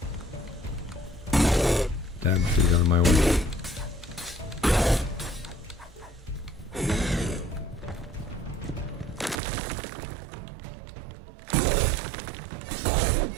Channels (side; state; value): left; drops out; at 9.3 s